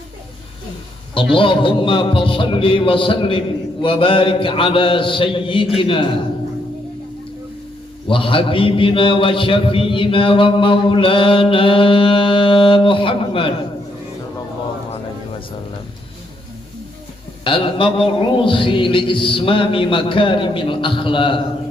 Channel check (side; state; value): both; normal; correlation 0.75